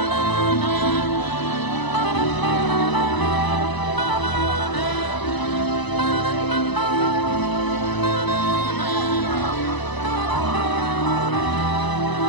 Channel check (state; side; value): late; right; 1.0 ms